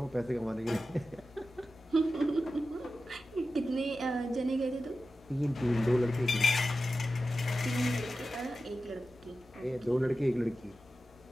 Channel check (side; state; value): both; normal; correlation 0.93